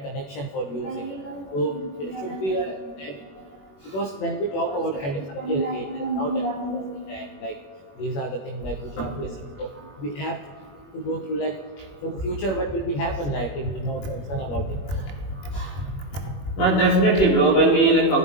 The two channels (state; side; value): late; right; 21 ms